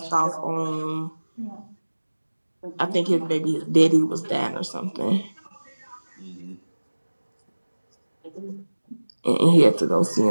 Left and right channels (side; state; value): both; inverted; correlation -1.00